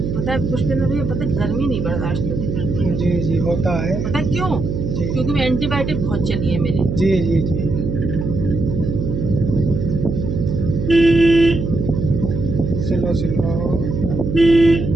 है पुष्पेंद्र भैया, पता है गर्मी नहीं बर्दाश्त होती। जी जी होता है। पता है क्यों? जी क्योंकि मैं एंटीबायोटिक बहुत चली है मेरी। जी जी जी स्लो स्लो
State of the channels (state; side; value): noise; right; hum, 3 dB below the sound